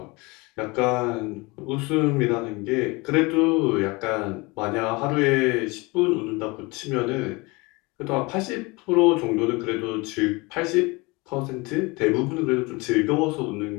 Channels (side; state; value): right; quieter; 25.4 dB